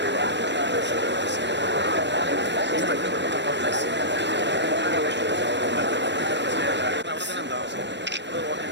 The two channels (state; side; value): late; left; 0.52 ms